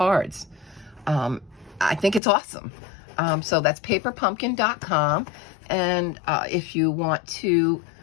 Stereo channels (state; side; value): drops out; right; at 2.2 s